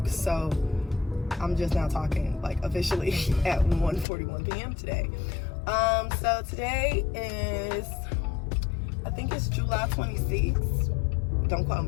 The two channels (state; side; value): drops out; right; at 4.0 s